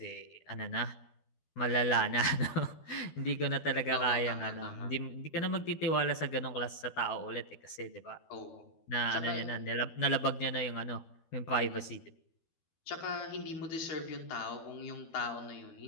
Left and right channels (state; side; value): late; right; 12 ms